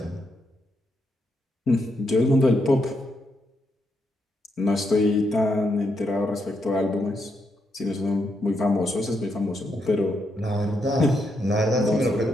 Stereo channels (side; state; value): both; normal; correlation 0.80